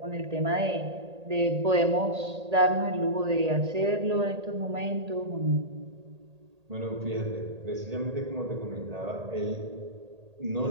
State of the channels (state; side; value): late; left; 1.8 ms